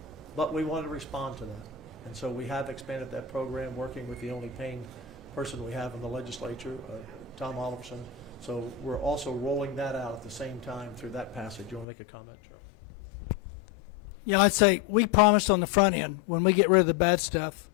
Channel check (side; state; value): right; drops out; at 11.9 s